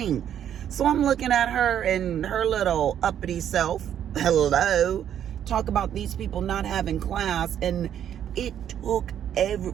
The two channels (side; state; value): left; quieter; 9.9 dB